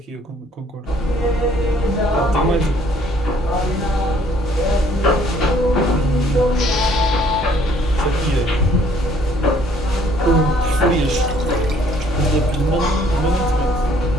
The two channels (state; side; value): normal; both; correlation 0.61